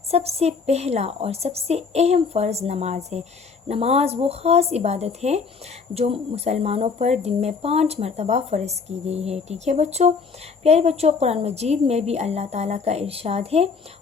सबसे पहला और सबसे अहम फ़र्ज़ नमाज है। नमाज वो ख़ास इबादत है जो मुसलमानों पर दिन में 5 मरतबा फ़र्ज़ की गई है। ठीक है बच्चों। प्यारे बच्चों, कुरान मजीद में भी अल्लाह ताला का इरशाद है,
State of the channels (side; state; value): right; quieter; 5.2 dB